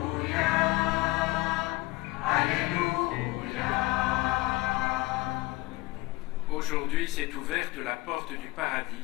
Aujourd'hui s'est ouverte la porte du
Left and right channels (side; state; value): right; quieter; 20.9 dB